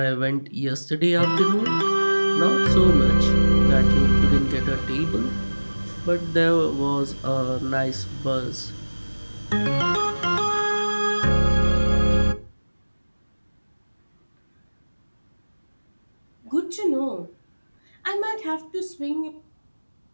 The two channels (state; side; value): inverted; both; correlation -1.00